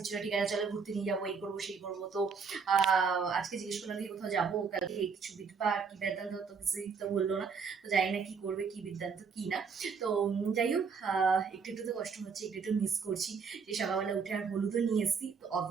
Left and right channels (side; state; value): left; quieter; 5.6 dB